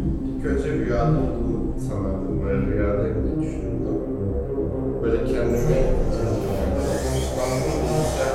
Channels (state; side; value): identical; both; correlation 1.00